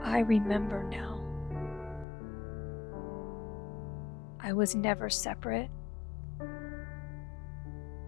I remember now. I was never separate.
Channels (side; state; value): right; drops out; at 2.1 s